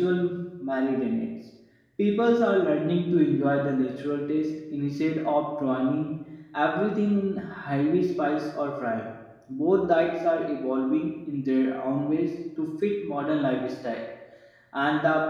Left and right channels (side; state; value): both; identical; correlation 1.00